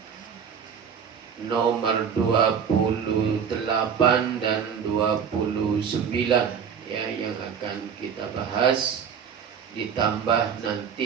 nomor 28 dan 29 ya, yang akan kita bahas, ditambah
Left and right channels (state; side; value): quieter; left; 7.2 dB